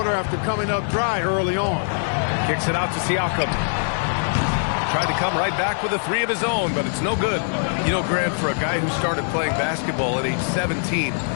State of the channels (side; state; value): right; silent; digital silence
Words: after coming up dry early on. Kicks it out to Siakam. Tried to come right back with a 3 of his own, but it's no good. You know, Grant, for a guy who started playing basketball at age 17,